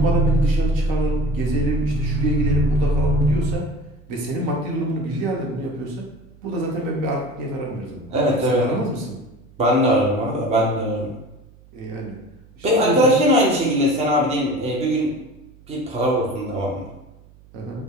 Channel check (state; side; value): noise; right; hum, 25 dB below the sound